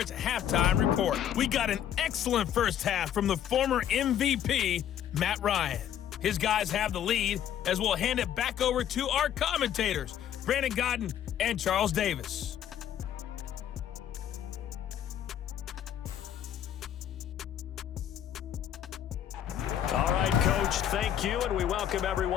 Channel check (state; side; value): quieter; right; 10.2 dB